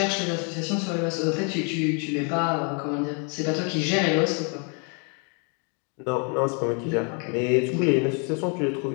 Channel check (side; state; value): right; quieter; 37.2 dB